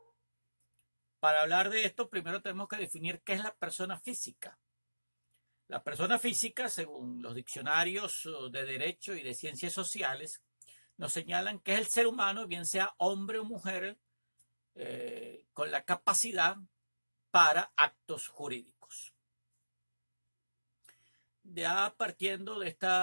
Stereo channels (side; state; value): both; inverted; correlation -1.00